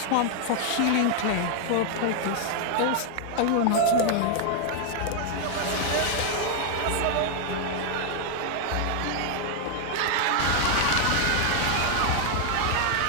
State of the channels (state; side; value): different; both; correlation 0.00